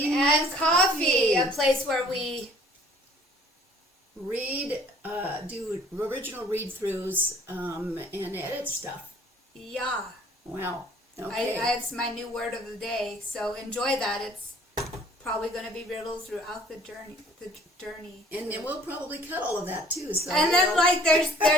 and Coffee, a place where we read, do original read-throughs, and edit stuff. Yeah. Wow. Okay. It's my new word of the day, so enjoy that. It's probably going to be riddles throughout the journey. And then we'll probably cut all of that too. So and then there's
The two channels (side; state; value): both; normal; correlation 0.55